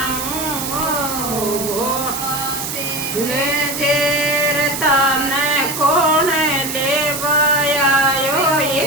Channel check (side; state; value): right; noise; hiss, 5 dB below the sound